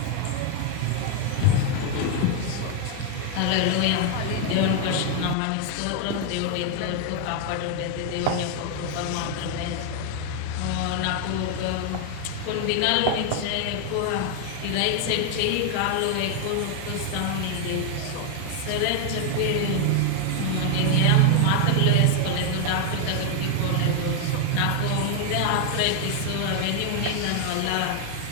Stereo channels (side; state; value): both; different; correlation 0.01